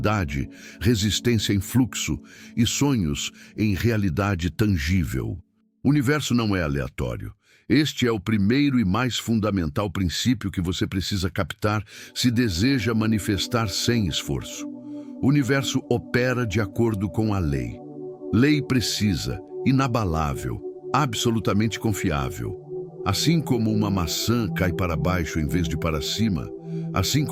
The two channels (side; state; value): both; identical; correlation 1.00